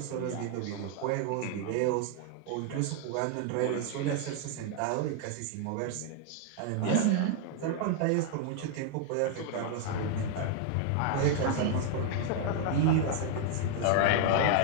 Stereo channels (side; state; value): both; different; correlation 0.00